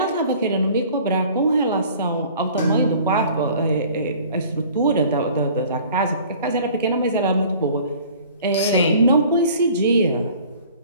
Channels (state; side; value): inverted; both; correlation -0.49